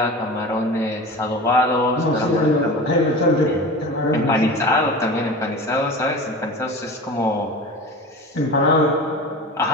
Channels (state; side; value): normal; both; correlation 0.33